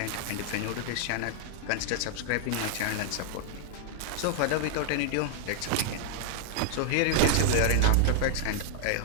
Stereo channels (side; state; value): both; different; correlation -0.01